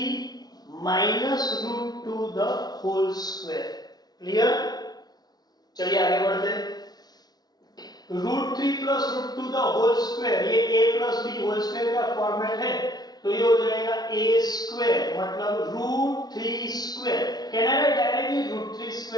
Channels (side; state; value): right; late; 0.19 ms